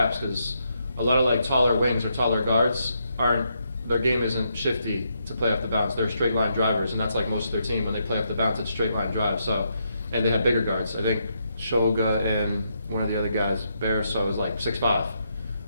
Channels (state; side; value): inverted; both; correlation -0.79